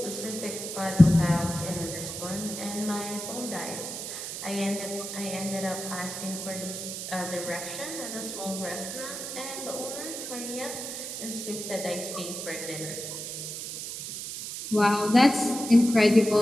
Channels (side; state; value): right; noise; hiss, 7 dB below the sound